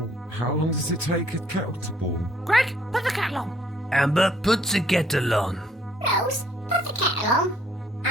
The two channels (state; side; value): normal; both; correlation 0.64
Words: how long does it take a kettle to boil? Greg, put the kettle on. Amber, put the kettle on. Rose, put the kettle on.